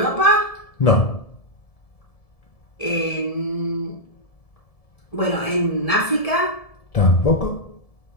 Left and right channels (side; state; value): right; late; 1.7 ms